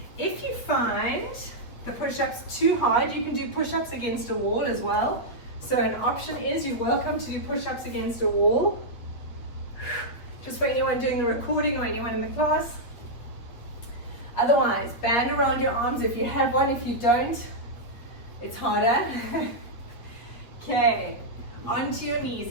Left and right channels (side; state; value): right; late; 8.3 ms